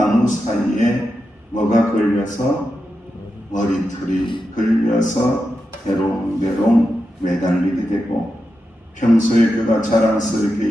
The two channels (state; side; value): normal; both; correlation 0.88